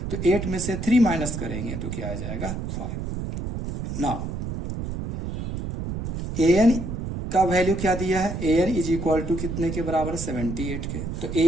तो 8 में से 3 माइनस करेंगे तो क्या आ जाएगा 5। नाउ an का वैल्यू क्या दिया है, an इज इक्वल टू कितने के बराबर 78 के। तो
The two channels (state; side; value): noise; right; rumble, 5 dB below the sound